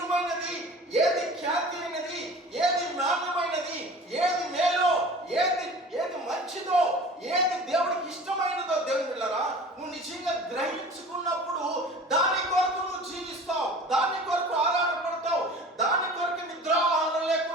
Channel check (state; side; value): normal; both; correlation 0.41